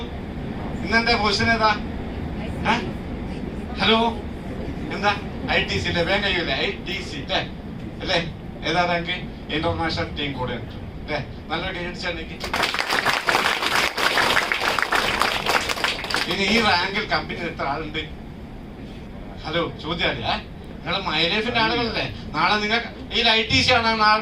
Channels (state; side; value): identical; both; correlation 1.00